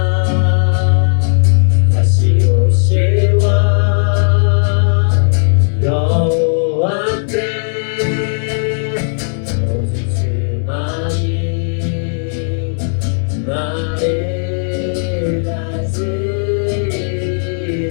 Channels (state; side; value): silent; right; digital silence